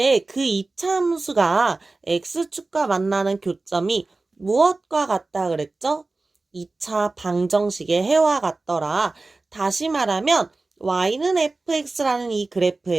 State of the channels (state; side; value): quieter; left; 3.4 dB